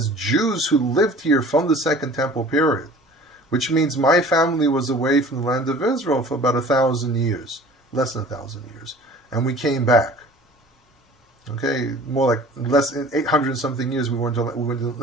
Jews who lived here from the Second Temple period, which means my family was away from the land of Israel for about 1,000 years, less than 1,000 years, and we came back. Okay, more like less than 800 something years we went to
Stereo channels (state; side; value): normal; both; correlation 0.45